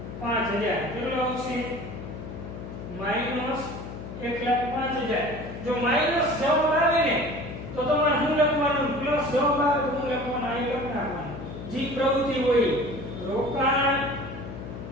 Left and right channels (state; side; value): noise; left; hum, 10 dB below the sound